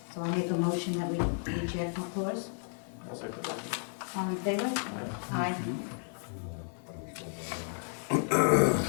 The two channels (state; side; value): silent; right; 56 dB below the other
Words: So I make a motion that we reject McClure's. I'll second that. All in favor? Aye.